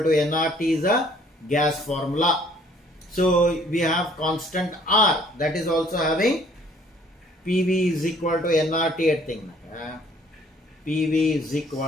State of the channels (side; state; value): both; normal; correlation 0.59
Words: nRT is a gas formula. So we have constant R, that is also having PV is equal to nRT at thing. PV is